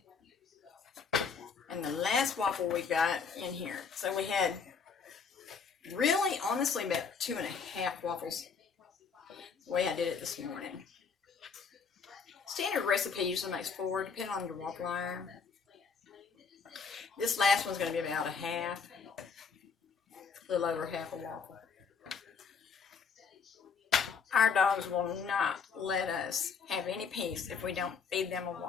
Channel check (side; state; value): right; quieter; 5.8 dB